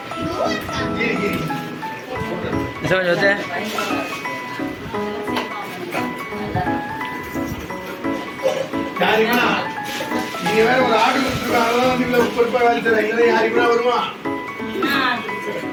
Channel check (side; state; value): both; identical; correlation 1.00